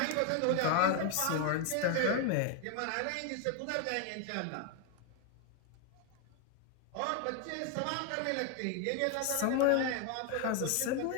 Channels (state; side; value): different; both; correlation 0.01